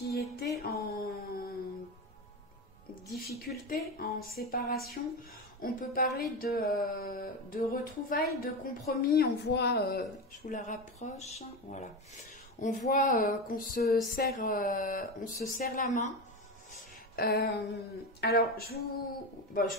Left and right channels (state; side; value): normal; both; correlation 0.19